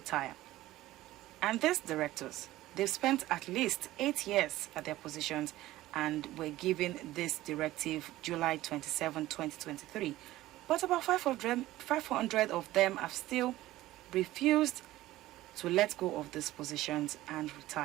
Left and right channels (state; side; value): quieter; left; 16.1 dB